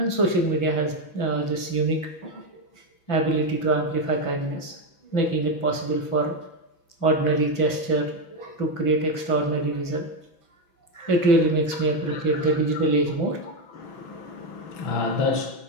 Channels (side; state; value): right; late; 6.0 ms